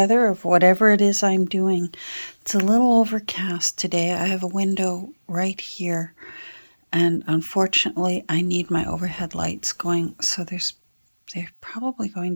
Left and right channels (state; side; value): inverted; both; correlation -1.00